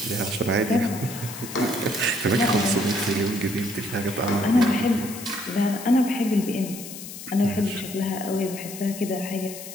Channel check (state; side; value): noise; left; hiss, 12 dB below the sound